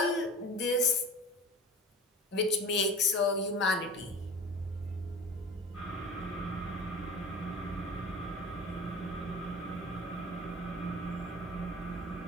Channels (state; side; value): normal; both; correlation 0.38